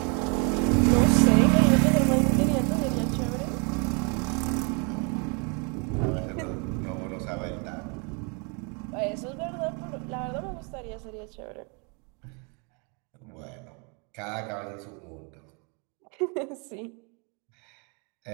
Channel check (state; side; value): quieter; left; 34.1 dB